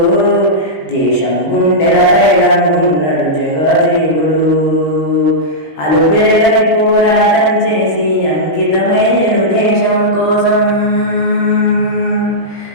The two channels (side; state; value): right; late; 19 ms